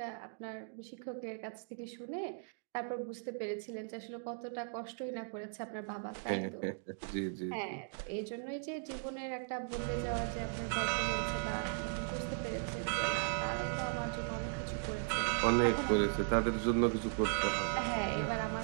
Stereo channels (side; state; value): left; silent; digital silence